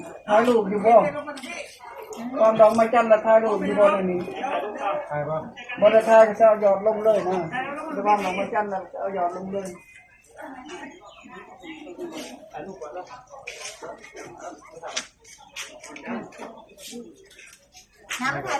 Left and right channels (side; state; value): both; identical; correlation 1.00